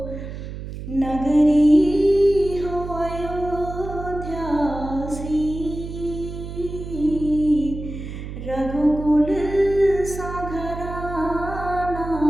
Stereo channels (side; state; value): right; noise; hum, 9 dB below the sound